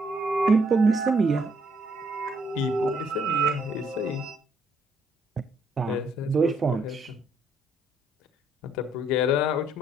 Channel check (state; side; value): normal; both; correlation 0.70